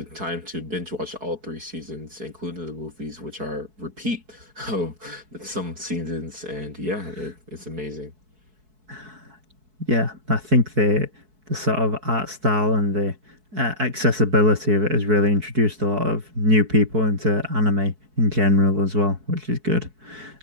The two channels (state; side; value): late; left; 4.6 ms